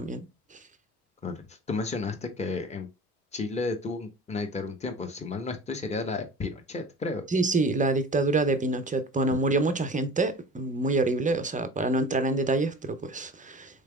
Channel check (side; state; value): both; normal; correlation 0.40